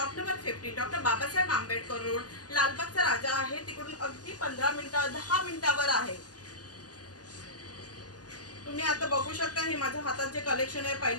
number 50, doctor Babasaheb Ambedkar road, लालबागचा राजा आहे। तिकडून अगदी 15 मिनिटं 10 मिनिटावर आहे। तुम्ही आता बघू शकता हे माझ्या हातात जे कलेक्शन आहे,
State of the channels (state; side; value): late; right; 0.68 ms